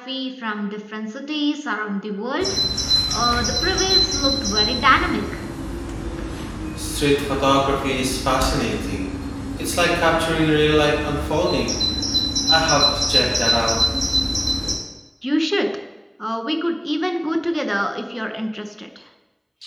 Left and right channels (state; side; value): identical; both; correlation 1.00